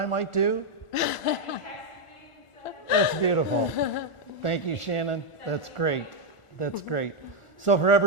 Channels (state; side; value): late; right; 1.4 ms